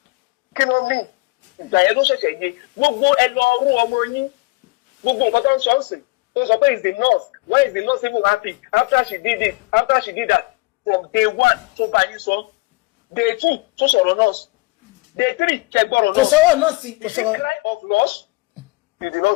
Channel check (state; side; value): quieter; right; 24.3 dB